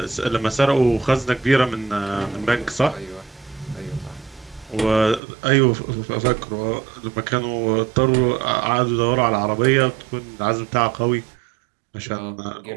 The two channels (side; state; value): left; drops out; at 5.2 s